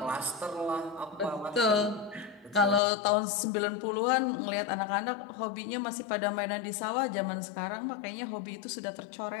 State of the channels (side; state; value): right; drops out; at 2.8 s